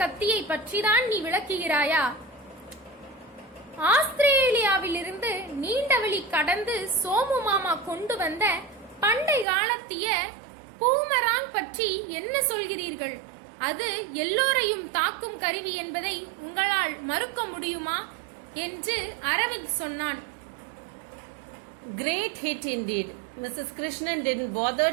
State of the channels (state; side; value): drops out; left; at 9.5 s